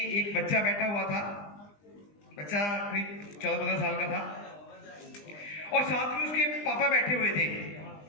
बच्चा बैठा हुआ था, बच्चा करीब 14-15 साल का था, और साथ में उसके पापा बैठे हुए थे।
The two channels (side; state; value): right; late; 20 ms